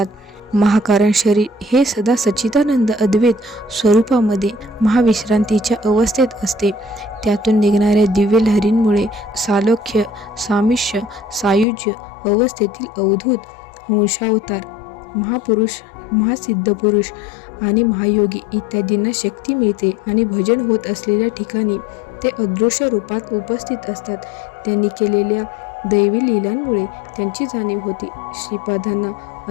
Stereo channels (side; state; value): right; drops out; at 11.7 s